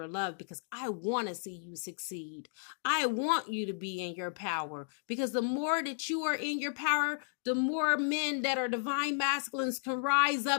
of love because I want to see you succeed. I want you to be in your power, because the more that you are in your power, the more men that are divine masculines can rise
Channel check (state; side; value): silent; right; digital silence